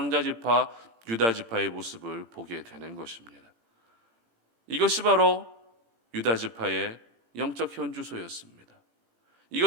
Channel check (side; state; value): left; late; 18 ms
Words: 유다지파의 모습을 보게 되는 것입니다. 이것이 바로 유다지파의 영적 현주소였습니다.